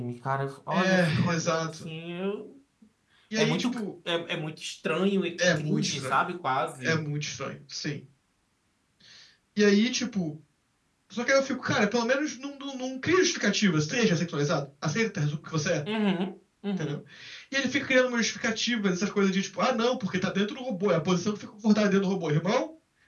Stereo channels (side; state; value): both; identical; correlation 1.00